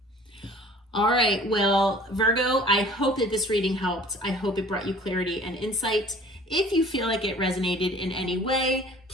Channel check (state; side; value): normal; both; correlation 0.49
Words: All right. Well, Virgo, I hope that this reading helped. I hope it brought you clarity and insight. If you feel like it resonated in any way,